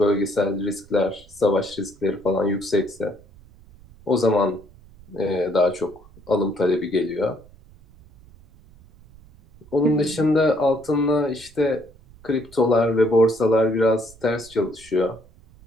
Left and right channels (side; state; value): right; noise; rumble, 24 dB below the sound